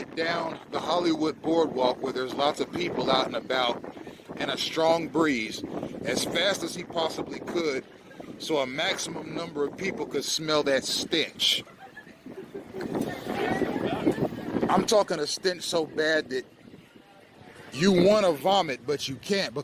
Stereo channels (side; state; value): both; identical; correlation 1.00